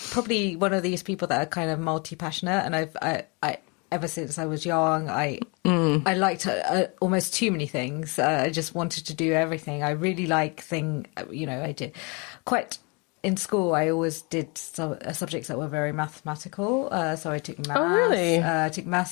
probably one of these people that are kind of multi-passionate, and I ever since I was young, I liked almost too many things. I just wanted to do everything. I really like I did quite... In school, I always did subjects that were very mathematical. So I took maths. Oh, really? I took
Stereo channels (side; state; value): right; quieter; 31.1 dB